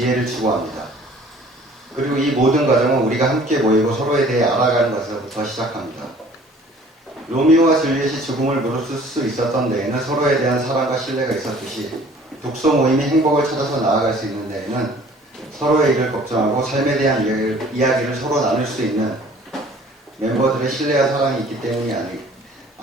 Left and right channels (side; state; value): both; normal; correlation 0.52